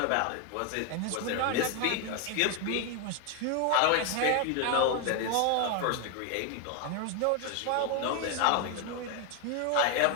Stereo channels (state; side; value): different; both; correlation 0.01